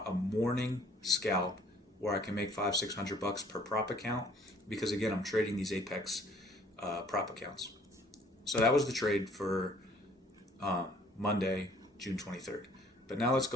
a morning scalp where I can make $500-600 per prop account, because again, I'm trading these Apex prop accounts. So that was the trade for Monday, June 23rd. But now let's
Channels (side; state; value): both; normal; correlation 0.58